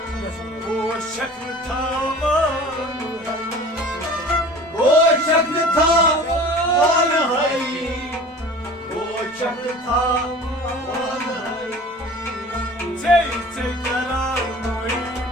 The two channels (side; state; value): both; normal; correlation 0.42